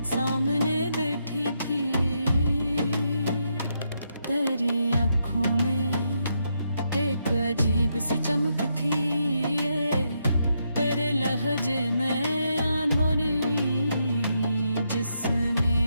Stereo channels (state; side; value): inverted; both; correlation -0.80